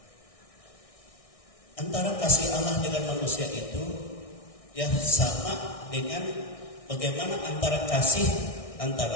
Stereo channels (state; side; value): late; right; 1.6 ms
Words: antara kasih Allah dengan manusia itu, ya, sama dengan bagaimana antara kasih